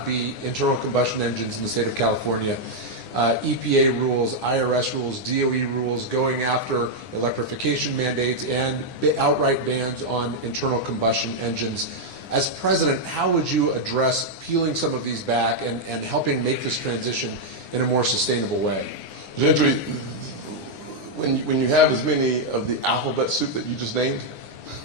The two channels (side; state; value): right; late; 9.8 ms